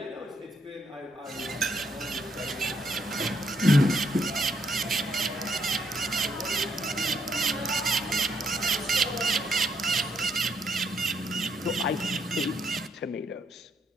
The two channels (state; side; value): normal; both; correlation 0.74